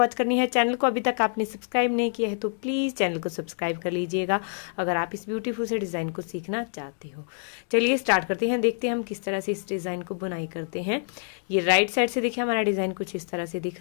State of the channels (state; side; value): silent; right; digital silence